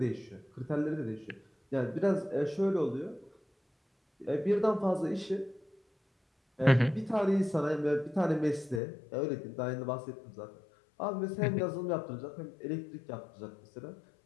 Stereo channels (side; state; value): right; drops out; at 8.8 s